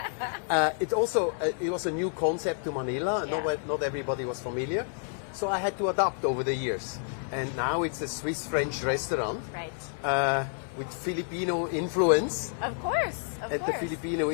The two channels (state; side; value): silent; right; 56 dB below the other